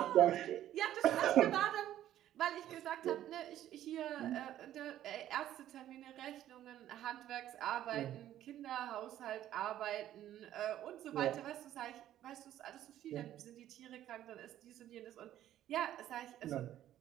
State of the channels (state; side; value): quieter; left; 12.3 dB